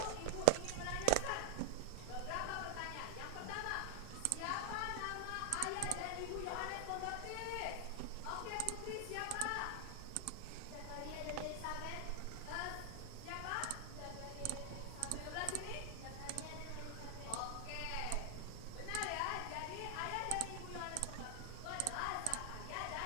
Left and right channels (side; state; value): both; different; correlation 0.00